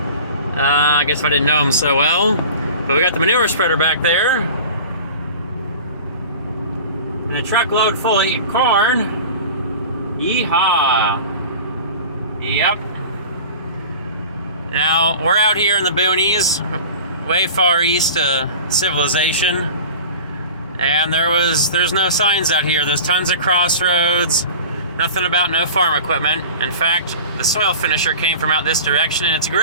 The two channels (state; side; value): inverted; both; correlation -0.38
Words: guess I didn't know him so well. But we got the manure spreader back there. And a truckload full of corn. Yeehaw. Yep. Now, we're out here in the boonies, way far east of civilization. And there's no signs out here. There's tons of crossroads. Nothing about no farm equipment. In fact, the soil finisher came from out this direction, and it's